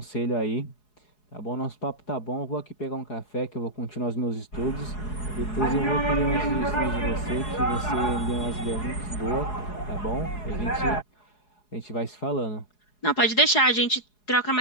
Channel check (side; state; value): right; late; 4.8 ms